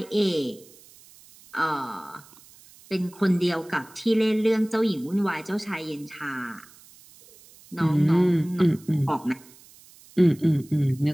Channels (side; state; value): right; noise; hiss, 24 dB below the sound